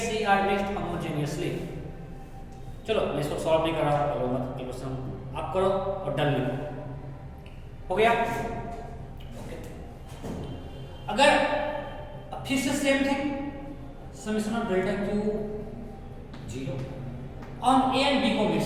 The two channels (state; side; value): identical; both; correlation 1.00